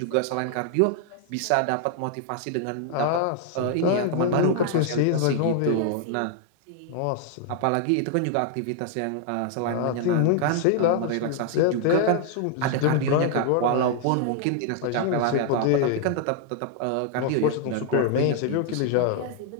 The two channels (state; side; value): different; both; correlation 0.00